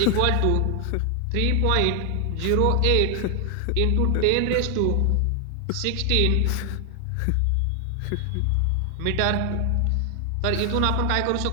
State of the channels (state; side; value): different; both; correlation 0.00